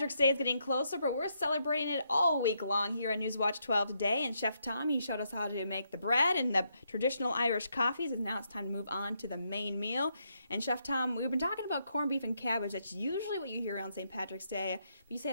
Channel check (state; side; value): inverted; both; correlation -0.78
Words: Day is getting closer, but we're celebrating it all week long here on Newswatch 12 today. And Chef Tom, he showed us how to make the bread and the traditional Irish coffees, and now it's time to move on to the main meal. And Chef Tom, we've been talking about corned beef and cabbage. That's usually what you hear around St. Patrick's Day, but you say